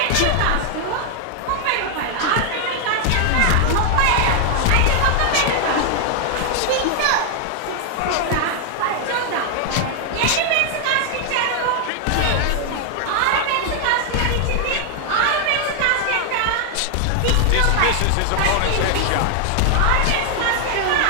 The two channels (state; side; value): different; both; correlation 0.00